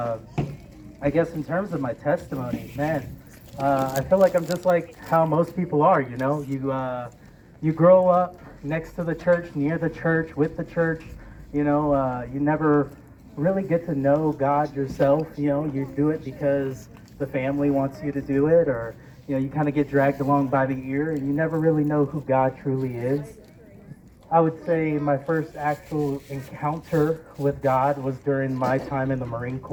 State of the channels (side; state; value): both; identical; correlation 1.00